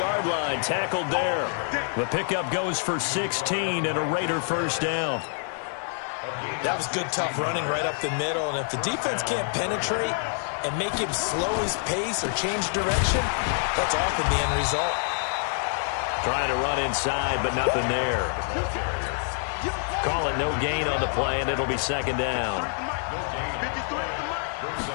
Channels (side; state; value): right; silent; 60 dB below the other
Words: line. Tackled there. The pickup goes for 16 and a Raider 1st down. That was good, tough running right up the middle. And if the defense can't penetrate and make him slow his pace or change direction, that's often the end result. Trying to run inside, but nothing there. Call it no gain on the play, and it'll be 2nd down.